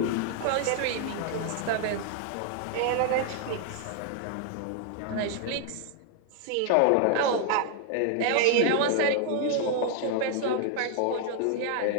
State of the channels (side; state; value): both; different; correlation 0.00